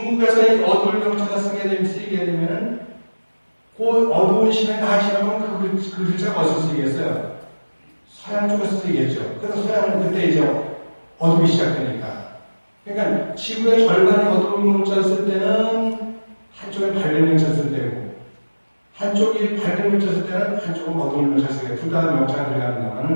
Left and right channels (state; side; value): inverted; both; correlation -1.00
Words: 이 어둠의 명자가 쓰이게 되면 그 어두운 시간이 다 지나면 그 글자가 어디서 쓰이겠어요? 서양 쪽에서 쓰이겠죠. 그래서 서양은 그때 이제 어둠이 시작되니까. 그러니까 지구의 절반이 어두운 문자를 쓸 때는 한쪽에 밝은 문자를 쓸 때고, 한쪽이 밝은 문자를 쓸 때는 한쪽은 어두운 문자를 쓸 때고, 둘 다 명자가